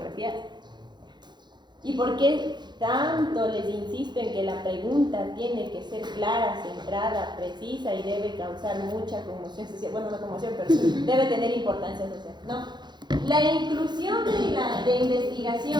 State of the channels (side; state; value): left; late; 0.21 ms